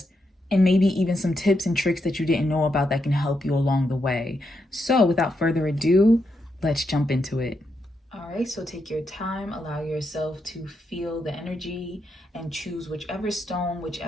and maybe even some tips and tricks that you didn't know about that can help you along the way. So without further ado, let's jump into it. All right, so take your time, allow yourself to feel the energy and choose whichever stone,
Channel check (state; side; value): normal; both; correlation 0.82